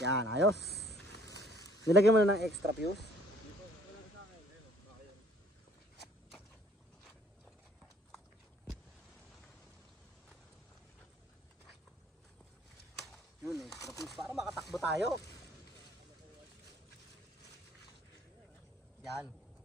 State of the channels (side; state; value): both; normal; correlation 0.58